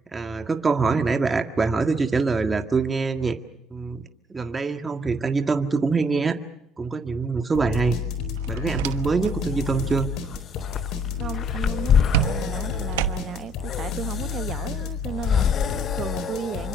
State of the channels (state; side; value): normal; both; correlation 0.66